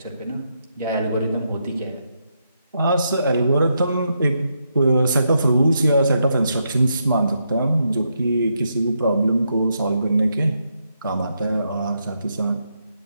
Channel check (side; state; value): both; inverted; correlation -0.81